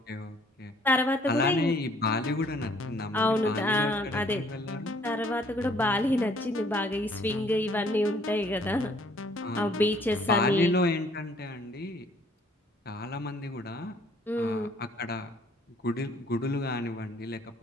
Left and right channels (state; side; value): normal; both; correlation 0.60